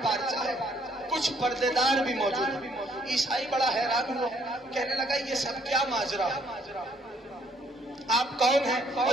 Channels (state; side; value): normal; both; correlation 0.66